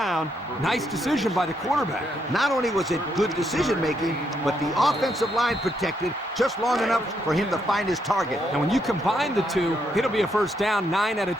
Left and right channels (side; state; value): both; normal; correlation 0.77